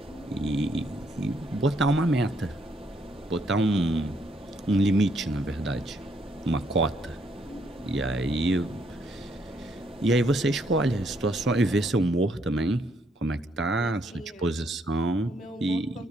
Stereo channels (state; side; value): normal; both; correlation 0.71